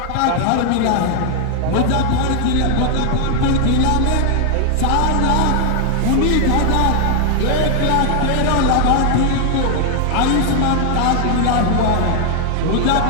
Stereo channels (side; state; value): both; different; correlation 0.00